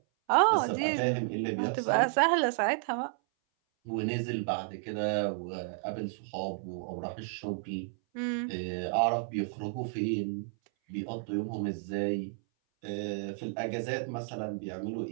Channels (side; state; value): left; silent; 56 dB below the other